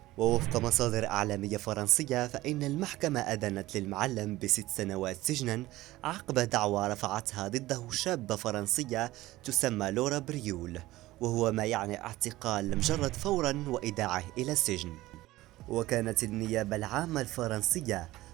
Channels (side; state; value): left; quieter; 17.3 dB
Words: ووفق مصادر إعلامية فرنسية فإن المحكمة أدانت للمعلم ب6 سنوات سجنا عقب دعوى رفعتها ضده شابة فرنسية تسمى لورا بريول، وهو ما يعني اعتقال المجرد فورا وإيداعه إلى السجن. وكانت النيابة العامة الفرنسية